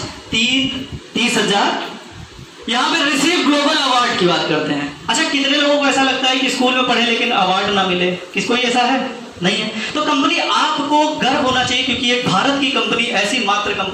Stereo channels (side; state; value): both; identical; correlation 1.00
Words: 30,000। यहां पे रिसीव ग्लोबल अवार्ड की बात करते हैं। अच्छा, कितने लोगों को ऐसा लगता है कि स्कूल में पढ़े लेकिन अवार्ड ना मिले? किसको ऐसा है? नहीं है। तो कंपनी आपको गर्व होना चाहिए क्योंकि एक भारत की कंपनी ऐसी मात्र